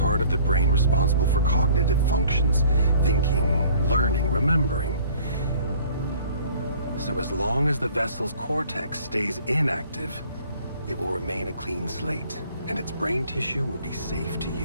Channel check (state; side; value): inverted; both; correlation -0.53